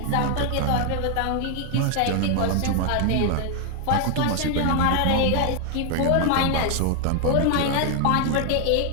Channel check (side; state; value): both; different; correlation 0.00